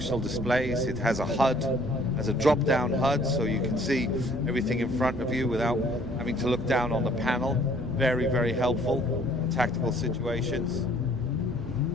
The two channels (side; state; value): right; noise; rumble, 12 dB below the sound